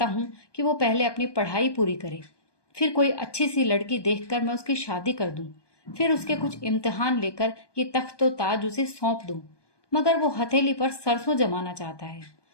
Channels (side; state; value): right; late; 1.2 ms